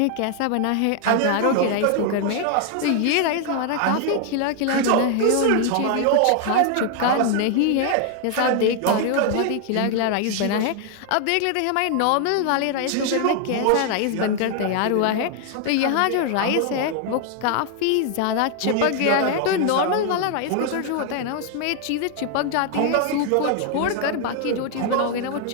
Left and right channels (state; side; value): different; both; correlation 0.00